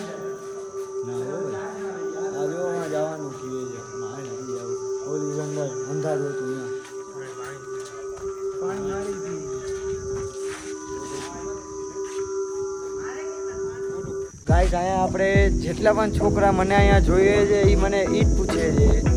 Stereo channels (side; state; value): both; identical; correlation 1.00